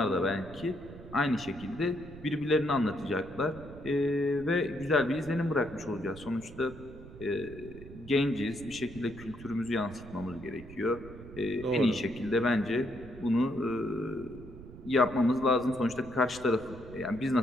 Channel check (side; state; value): right; noise; rumble, 16 dB below the sound